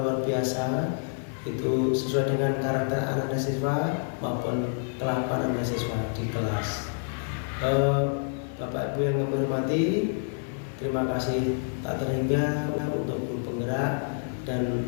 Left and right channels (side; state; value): right; silent; digital silence